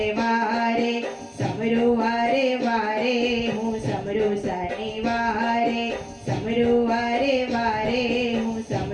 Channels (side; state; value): both; identical; correlation 1.00